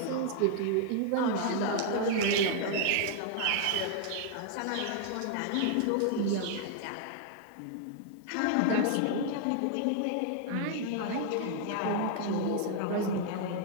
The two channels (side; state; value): both; different; correlation 0.00